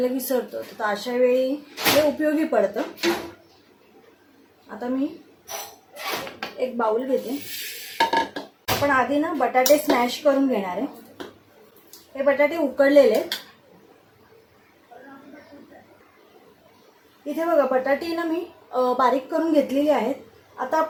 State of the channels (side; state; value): both; identical; correlation 1.00